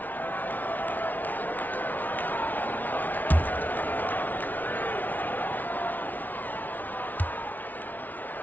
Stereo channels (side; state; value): right; late; 0.081 ms